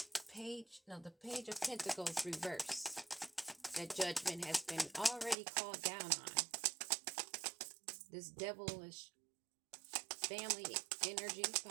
page. No, the Page of Pentacles reverse. That judgment has been already called down on. This devilish family energy,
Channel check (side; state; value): left; drops out; at 5.4 s